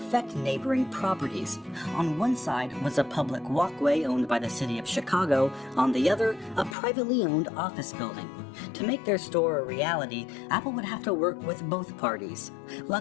neighboring properties. On one side was a public walkway owned by the city of Chicago, on the other, a privately owned office building. To make their store a reality, Apple would have to work with both parties.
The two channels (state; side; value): drops out; right; at 6.8 s